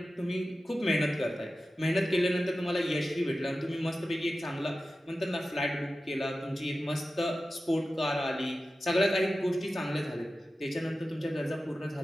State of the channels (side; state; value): both; normal; correlation 0.94